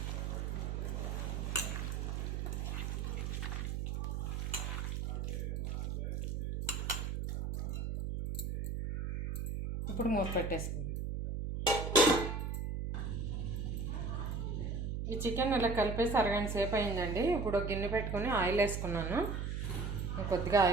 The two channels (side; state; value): right; noise; hum, 2 dB below the sound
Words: ఇప్పుడు మూత పెట్టేసుకుందాం. ఈ చికెన్ ఇలా కలిపేసి అరగంట సేపు అయిందండి. ఇప్పుడు గిన్నె పెట్టుకొని ఆయిల్ వేసుకున్నాను. కొద్దిగా